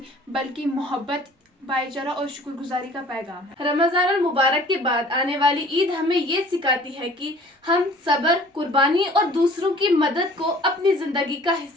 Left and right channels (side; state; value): both; normal; correlation 0.50